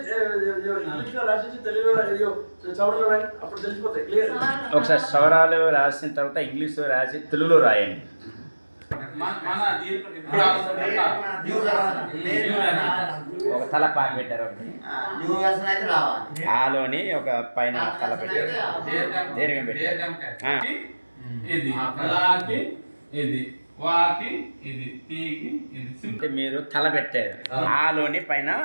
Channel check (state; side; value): inverted; both; correlation -1.00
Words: అప్పుడు తెలిసిపోతాయి క్లియర్. ఒకసారి సవరాలు రాసిన తర్వాత ఇంగ్లీష్ రాసి తెలుగులో రాయండి. ఒక తల పాక పెట్టారు, ఒకటి ఆలోని ఒక పైన తల పెట్టారు, దీర్ఘం పెట్టారు. ఇది వాకి ఇది తీకి ఇది మీరు తల పెట్టారు, ఆలోని పైన